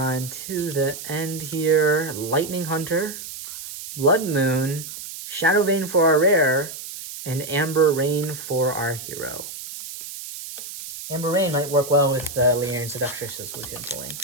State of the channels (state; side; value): noise; right; hiss, 10 dB below the sound